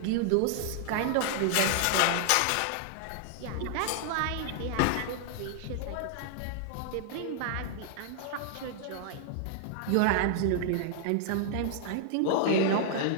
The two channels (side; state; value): both; different; correlation 0.00